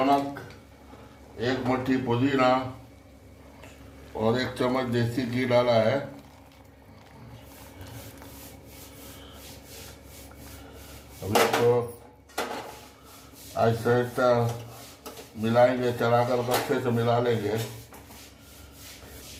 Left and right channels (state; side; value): identical; both; correlation 1.00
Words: 1 मुट्ठी पुदीना और 1 चम्मच देसी घी डाला है। अब इसको आहिस्ता आहिस्ता मिलाएंगे, चलाकर अच्छे से मिला लेंगे।